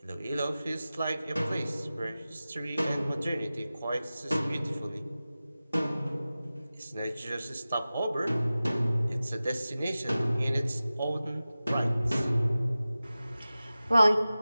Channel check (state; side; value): inverted; both; correlation -0.96